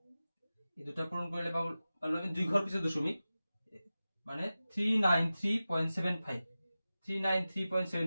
এই দুটা পূৰণ কৰিলে পালো আমি দুই ঘৰ পিছত দশমিক মানে 393.75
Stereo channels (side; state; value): both; inverted; correlation -0.95